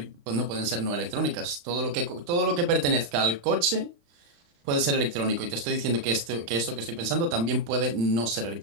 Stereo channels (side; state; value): left; late; 35 ms